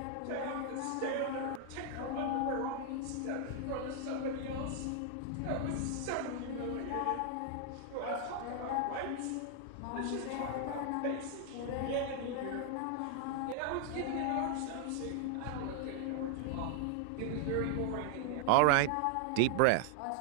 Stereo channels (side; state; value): both; different; correlation 0.00